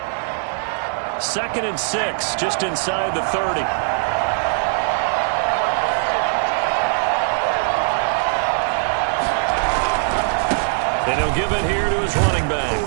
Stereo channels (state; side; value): silent; left; 61 dB below the other